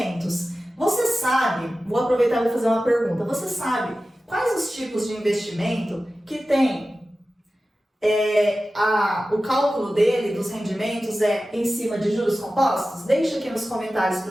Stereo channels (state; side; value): normal; both; correlation 0.95